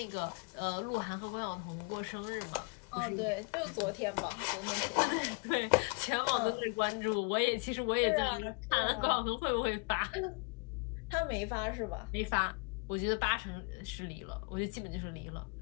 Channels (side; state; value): right; quieter; 35.6 dB